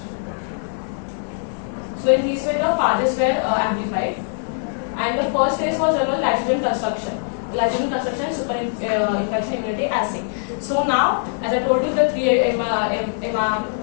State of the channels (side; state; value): right; silent; digital silence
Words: So in this way the phages were amplified, and the first phase was done on lysozyme construction. Lysozyme construction super infection immunity assay. So now, as I told you, the 3